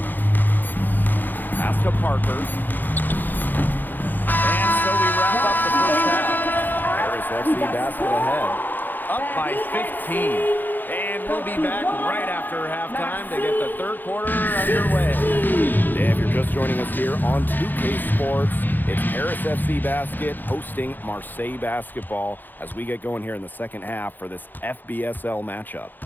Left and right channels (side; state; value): right; late; 0.088 ms